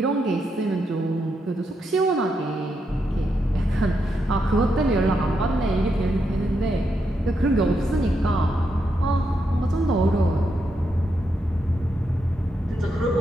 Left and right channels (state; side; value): normal; both; correlation 0.82